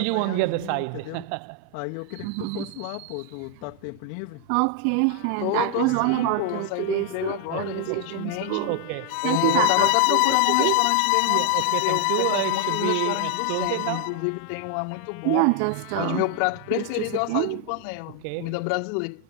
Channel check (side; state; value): both; different; correlation 0.00